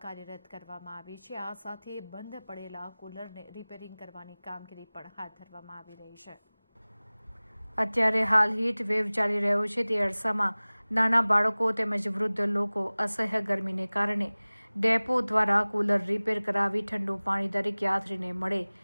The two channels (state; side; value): inverted; both; correlation -1.00